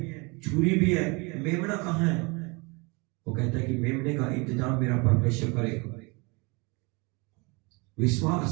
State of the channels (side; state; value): left; quieter; 28.7 dB